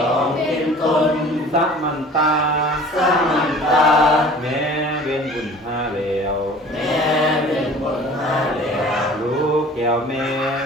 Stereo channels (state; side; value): normal; both; correlation 0.45